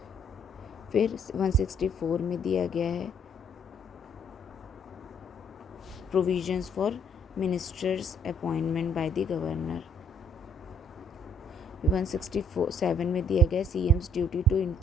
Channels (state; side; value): normal; both; correlation 0.65